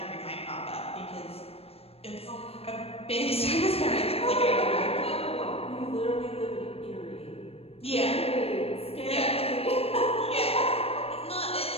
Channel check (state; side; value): late; right; 0.28 ms